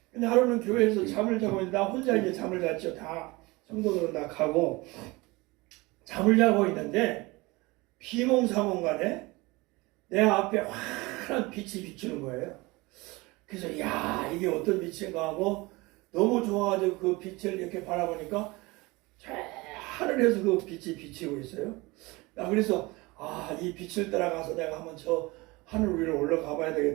근데 하루는 교회에서 잠을 자고 있는데 나 혼자 이제 잠을 잤죠. 다 성도들은 다 가고 잠을 자고 있는데 비몽사몽간에 내 앞에 환한 빛이 비추는 거예요. 그래서 야 이게 어떤 빛인가 하고 너무 좋아가지고 그 빛을 이렇게 바라보니까 저 하늘에서 그 빛이 비치고 있어요. 나 그래서 이 빛을 따라가서 내가 한번 저 하늘 위로 올라가 봐야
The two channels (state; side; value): quieter; left; 23.1 dB